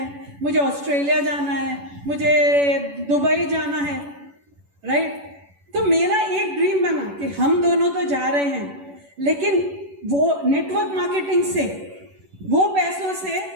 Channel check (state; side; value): late; left; 11 ms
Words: मुझे ऑस्ट्रेलिया जाना है, मुझे दुबई जाना है, राइट। तो मेरा एक ड्रीम बना कि हम दोनों तो जा रहे हैं, लेकिन वो नेटवर्क मार्केटिंग से वो पैसों से